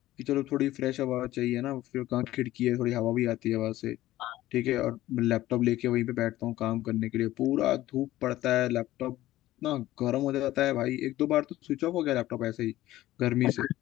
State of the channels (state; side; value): quieter; right; 15.5 dB